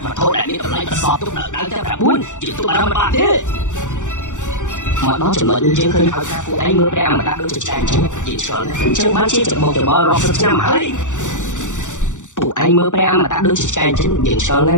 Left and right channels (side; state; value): right; late; 0.86 ms